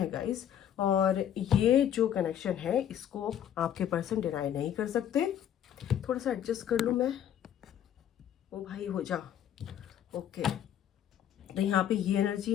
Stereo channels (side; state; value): right; quieter; 10.0 dB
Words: गाइस, और ये जो कनेक्शन है इसको आपके पर्सन डिनाई नहीं कर सकते। थोड़ा सा एडजस्ट कर लूँ मैं, ओ भाई हो जा। ओके, तो यहाँ पे ये